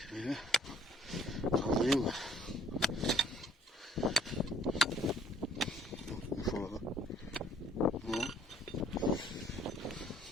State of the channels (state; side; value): normal; both; correlation 0.59